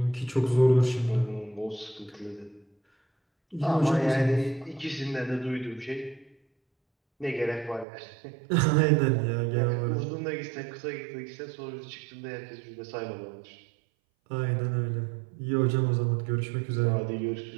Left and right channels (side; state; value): left; drops out; at 7.9 s